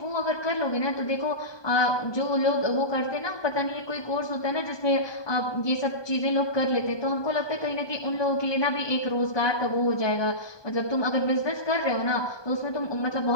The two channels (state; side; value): late; right; 1.2 ms